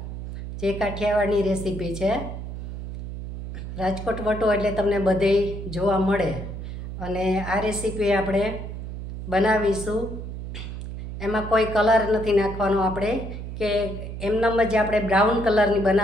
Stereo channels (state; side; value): noise; right; hum, 8 dB below the sound